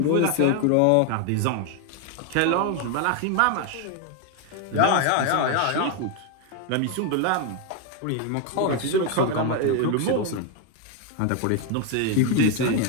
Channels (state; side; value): different; both; correlation 0.01